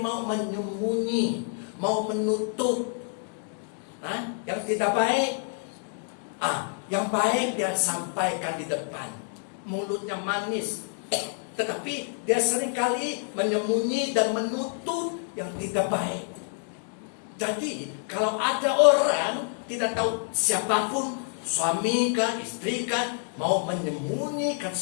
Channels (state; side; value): silent; right; 56 dB below the other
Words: mau menyembunyi, mau menutup yang tidak baik. Yang baik dia sampaikan di depan, mulutnya manis, tetapi dia seringkali menyembunyi dan menutup yang tidak baik. Jadi kalau ada orang tidak tahu siapapun, suami kah, istri kah, mau menyembunyikan